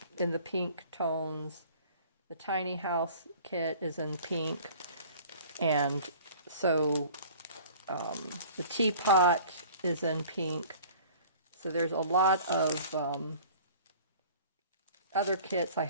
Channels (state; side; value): inverted; both; correlation -0.47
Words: in the pink tones. The tiny house kit is in pink. And so the teapot is in pink. So there's a lot of other kits. I